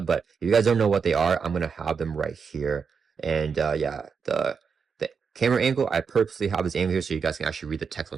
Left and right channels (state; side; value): quieter; left; 5.9 dB